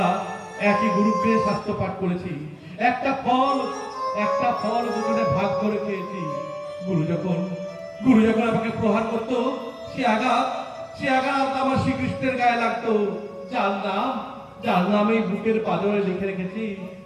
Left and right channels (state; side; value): identical; both; correlation 1.00